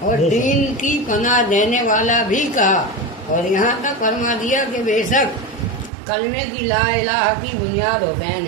اور دین کی پناہ دینے والا بھی کہا، اور یہاں تک فرما دیا کہ بے شک کلمے کی لا الہ کی بنیاد حسین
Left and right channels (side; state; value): left; drops out; at 5.9 s